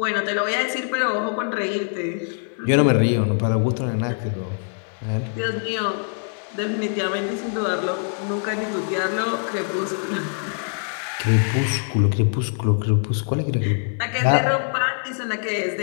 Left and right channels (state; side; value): silent; right; 63 dB below the other